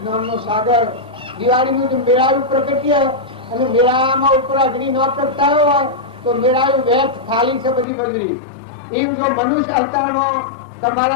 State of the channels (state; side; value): drops out; right; at 7.9 s